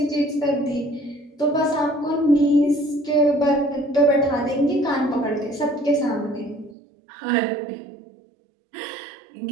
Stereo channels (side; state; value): left; drops out; at 6.8 s